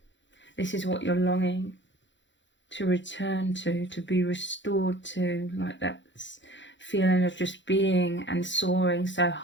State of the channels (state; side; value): late; right; 0.54 ms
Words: This is what you're longing to return to be restored to, like that feeling of just being and soaring so